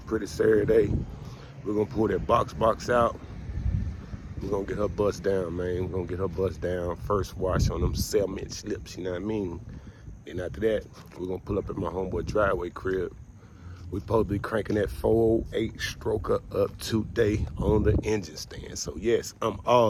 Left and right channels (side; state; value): both; identical; correlation 1.00